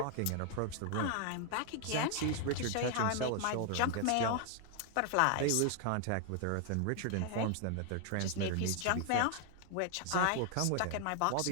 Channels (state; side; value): different; both; correlation 0.00